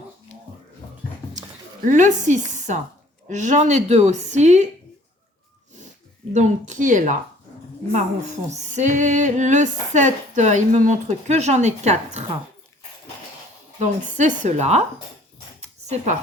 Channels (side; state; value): both; normal; correlation 0.56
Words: Le 6, j'en ai 2 aussi. Donc, qui est là? Marron foncé. Le 7, il me montre que j'en ai 4. Donc, c'est cela. C'est